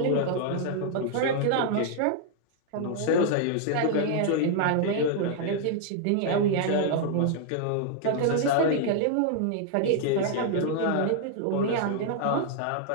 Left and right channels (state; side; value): different; both; correlation -0.01